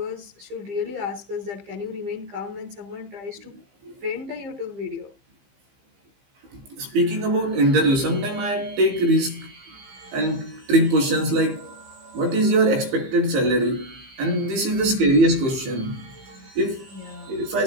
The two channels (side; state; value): left; late; 15 ms